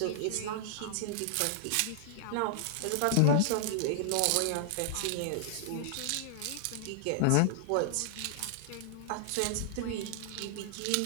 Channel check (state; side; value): different; both; correlation -0.01